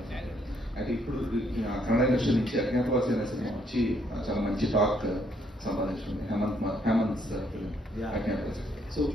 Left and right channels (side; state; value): both; normal; correlation 0.70